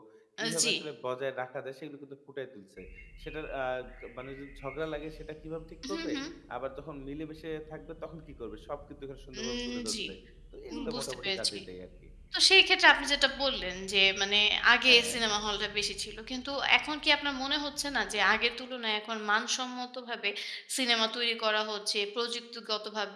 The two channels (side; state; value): both; identical; correlation 1.00